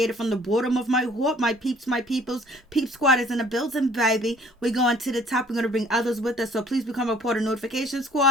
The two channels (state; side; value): normal; both; correlation 0.55